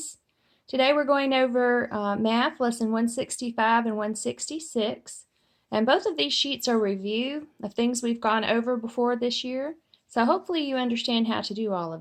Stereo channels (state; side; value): identical; both; correlation 1.00